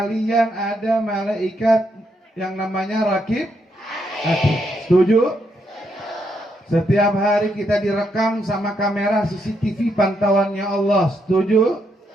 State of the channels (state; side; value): normal; both; correlation 0.78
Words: ada malaikat yang namanya Rakib. Setuju? Setiap hari kita direkam sama kamera CCTV pantauannya Allah. Setuju?